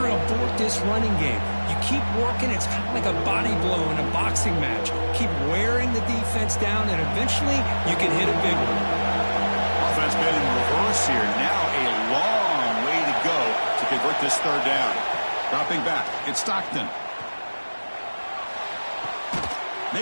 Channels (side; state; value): both; inverted; correlation -1.00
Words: abort this running game. You keep working. It's kind of like a body blow in a boxing match. Keep wearing the defense down, and eventually you can hit a big one. Offense been in reverse here. Now a long way to go to convert this third down. Dropping back. It's Stockton.